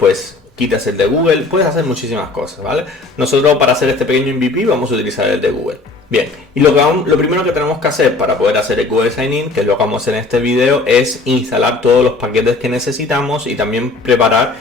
quitas el de Google. Puedes hacer muchísimas cosas, ¿vale? Nosotros, para hacer este pequeño MVP, vamos a utilizar el de Google. Bien, y lo primero que tenemos que hacer para poder hacer el Google Sign In, que es lo que vamos a hacer en este video, es instalar todos los paquetes que necesitamos y también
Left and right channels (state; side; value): quieter; right; 3.4 dB